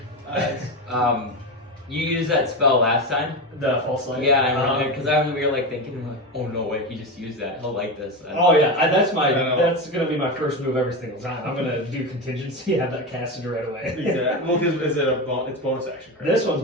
is, you used that spell last time. The false light? Yeah, I remember, because we were thinking, oh no way, he just used that, he'll like this. Oh yeah, that's gonna be my first move every single time. I'm gonna do contingency, have that casted right away. Exactly. Well, because it's bonus action, correct? This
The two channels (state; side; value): normal; both; correlation 0.18